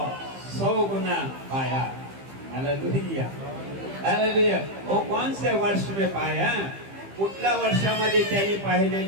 100 गुना पाया. हालेलुया. हालेलुया. वो कौन से वर्ष में पाया? कुठल्या वर्षामध्ये त्यांनी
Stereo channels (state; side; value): late; left; 15 ms